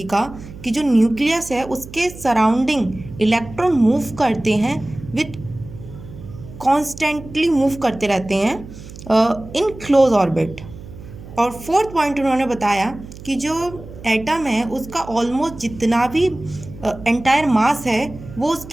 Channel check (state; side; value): noise; right; hum, 15 dB below the sound